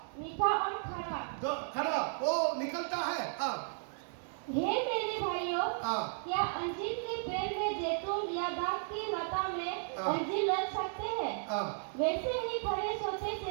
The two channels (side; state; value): left; silent; 55 dB below the other